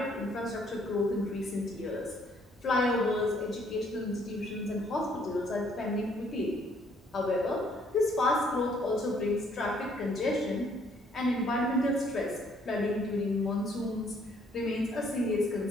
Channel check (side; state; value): both; normal; correlation 0.65